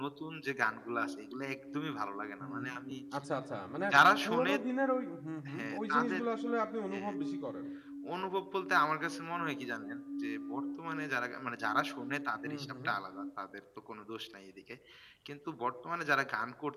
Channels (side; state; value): both; identical; correlation 1.00